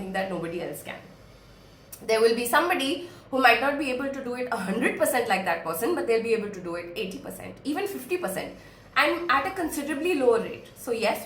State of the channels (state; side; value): identical; both; correlation 1.00